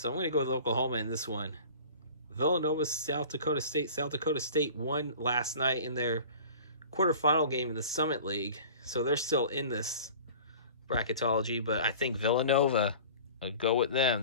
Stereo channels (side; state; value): both; inverted; correlation -0.42